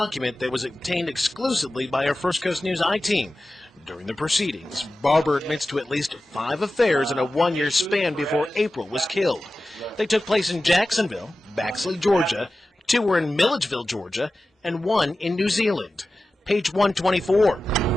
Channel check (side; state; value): both; normal; correlation 0.94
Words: that was obtained exclusively by our First Coast News I-team. During the proceedings, Barber admits to at least 5 affairs in a 1-year span before April was killed. They took place in Jacksonville, Baxley, Georgia, 2 were in Milledgeville, Georgia, and 1 in New Zealand. Page 124.